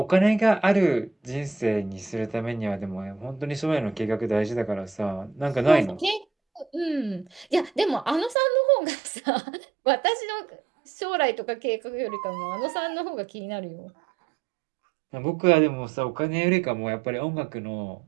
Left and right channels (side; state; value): left; drops out; at 8.3 s